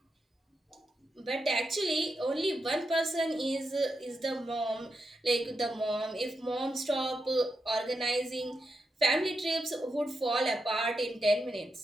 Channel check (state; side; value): normal; both; correlation 0.85